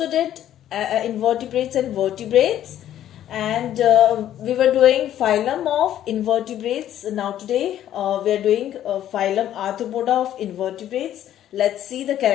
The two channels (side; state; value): right; quieter; 11.6 dB